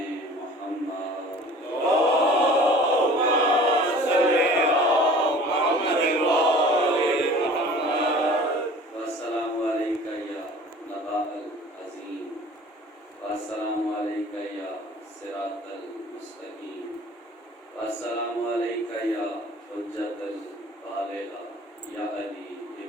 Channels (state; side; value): normal; both; correlation 0.45